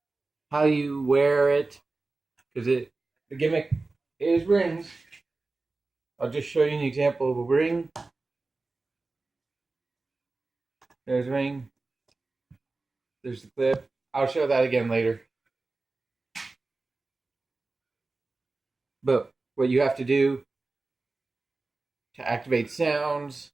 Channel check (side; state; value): left; quieter; 3.5 dB